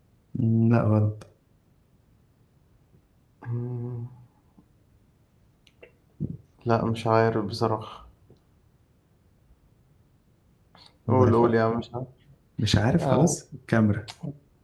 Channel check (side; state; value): both; identical; correlation 1.00